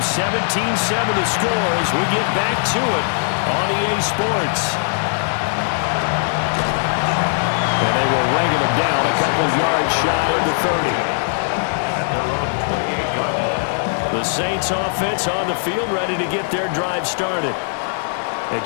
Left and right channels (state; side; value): silent; right; digital silence